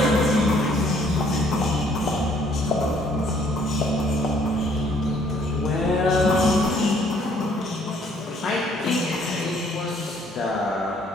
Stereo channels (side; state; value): both; normal; correlation 0.63